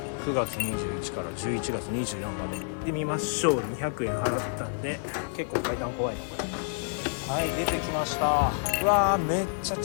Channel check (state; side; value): silent; right; 57 dB below the other